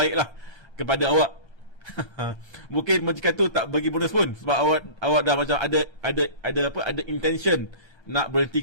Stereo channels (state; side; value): late; left; 8.7 ms